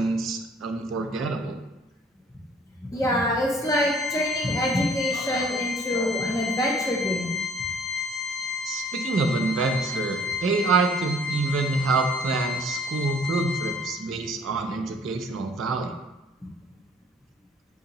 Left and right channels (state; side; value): normal; both; correlation 0.57